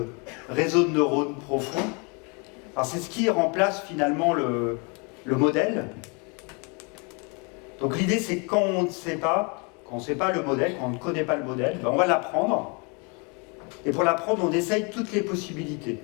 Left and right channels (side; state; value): right; quieter; 32.7 dB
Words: réseau de neurones profond. Alors c'est ce qui remplace finalement le modèle. Donc l'idée c'est quand on ne sait pas, le modèle, quand on ne connaît pas le modèle, ben on va l'apprendre. Et pour l'apprendre, on essaye toutes les possibilités.